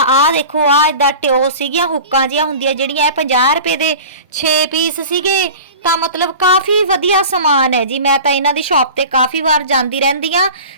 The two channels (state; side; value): inverted; both; correlation -0.37